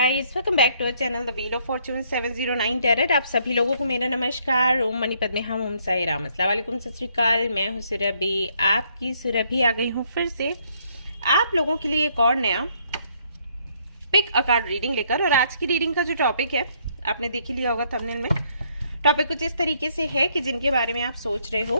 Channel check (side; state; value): both; inverted; correlation -0.69